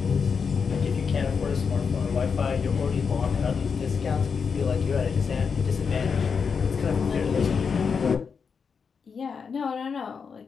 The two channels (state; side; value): quieter; right; 5.9 dB